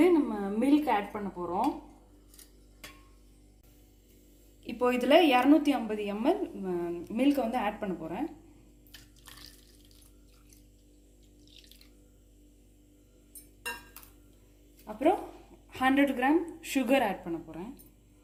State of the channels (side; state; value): both; identical; correlation 1.00